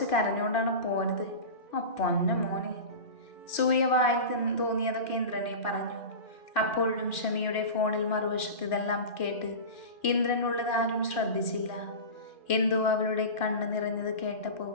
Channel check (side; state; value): right; late; 2.4 ms